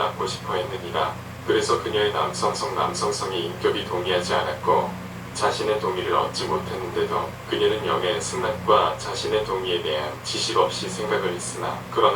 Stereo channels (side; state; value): both; identical; correlation 1.00